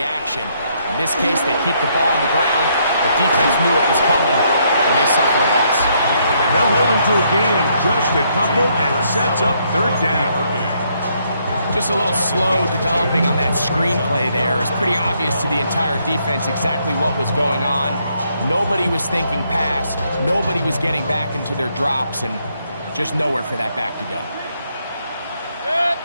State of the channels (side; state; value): both; inverted; correlation -0.72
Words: action. In this case, they keep the ball on the ground. The defense knew it was coming, and they suffer a loss. They'll hold him to a gain of just a couple and sets up third down. Just a little slow developing on that screenplay there. It's pretty obvious to the entire defense exactly what was going on. Nobody was thinking pass. Nobody was getting back into their drops, and just nowhere for that back to go.